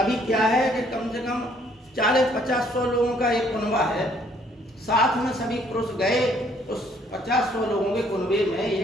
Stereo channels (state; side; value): normal; both; correlation 0.64